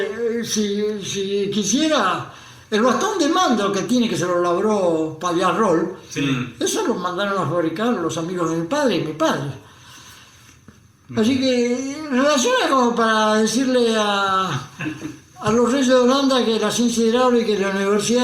si quisiera, el bastón de mando que tiene, que se lo labró Pallarrol, eso lo mandaron a fabricar los amigos de mi padre y mi padre. Así que relaciona como para decirle a los reyes de Holanda que la ciencia hidráulica y la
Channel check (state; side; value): identical; both; correlation 1.00